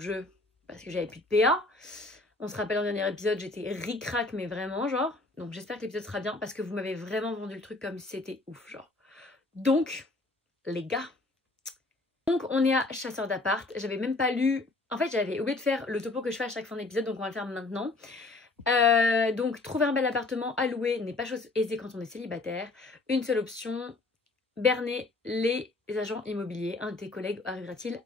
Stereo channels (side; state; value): right; quieter; 3.2 dB